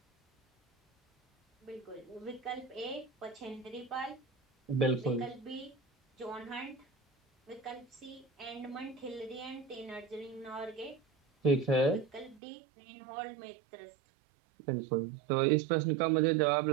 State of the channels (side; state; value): left; drops out; at 12.4 s